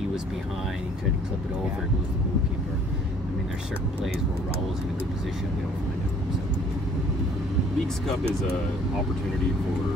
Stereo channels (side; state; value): both; normal; correlation 0.57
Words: was behind. He tried to clip it over. It was the goalkeeper. I mean, there's certain plays where Raul's in a good position. We don't find it. So. Leagues Cup is an opportunity